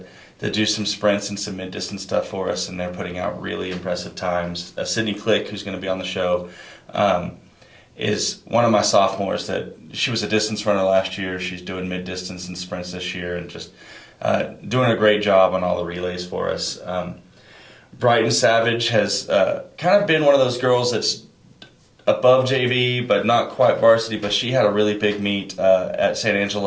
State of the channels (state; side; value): identical; both; correlation 1.00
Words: do some sprints and some mid-distance stuff for us, and they're putting out really impressive times. Sydney Click, who's going to be on the show, is one of my sophomores that she was a distance runner last year. She's doing mid-distance and sprints this year and just doing a great job on all the relays for us. Brighton Savage has kind of been one of those girls that's above JV but not quite varsity, but she had a really big meet at San